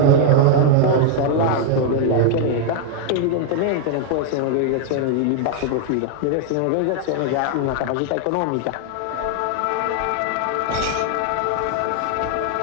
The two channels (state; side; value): different; both; correlation 0.00